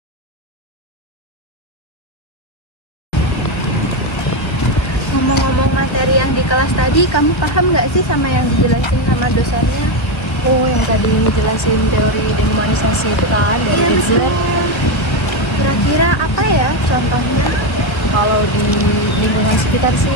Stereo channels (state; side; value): late; right; 1.4 ms